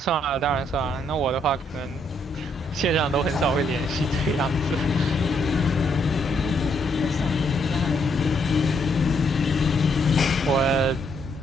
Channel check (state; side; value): normal; both; correlation 0.73